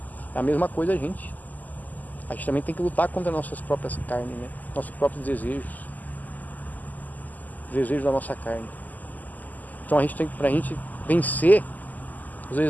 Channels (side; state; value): right; late; 0.081 ms